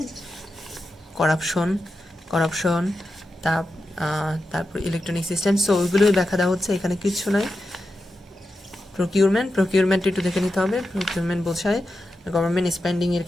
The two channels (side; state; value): both; normal; correlation 0.89